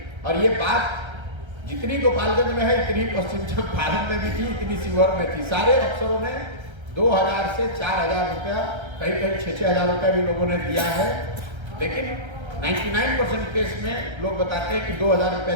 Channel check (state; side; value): late; left; 1.3 ms